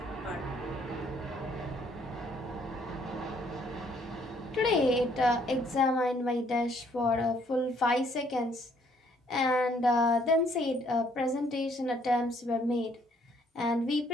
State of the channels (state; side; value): normal; both; correlation 0.65